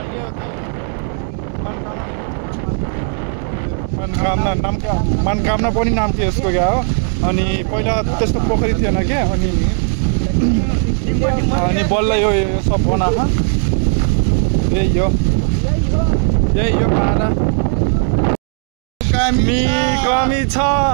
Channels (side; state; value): left; silent; 56 dB below the other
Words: मनकामना पनि नाम थियो यसको क्या हो। अनि पहिला त्यस्तो पोखरी थिएन क्या। अनि बल्ल यो सब बनाएको यही हो पारा कमी छ।